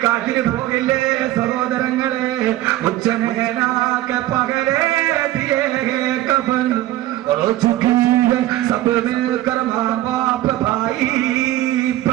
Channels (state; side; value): quieter; left; 15.0 dB